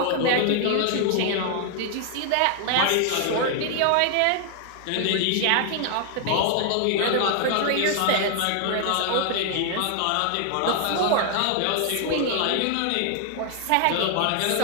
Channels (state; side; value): different; both; correlation 0.00